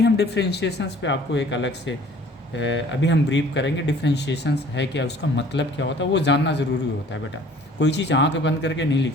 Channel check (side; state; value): both; normal; correlation 0.52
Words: हम डिफ्रेंशिएशंस पे आपको एक अलग से अभी हम ब्रीफ करेंगे डिफ्रेंशिएशंस है क्या, उसका मतलब क्या होता है, वो जानना ज़रूरी होता है बेटा। कोई चीज़ आँख बंद करके नहीं